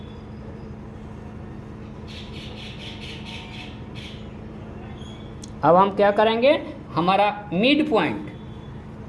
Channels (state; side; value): identical; both; correlation 1.00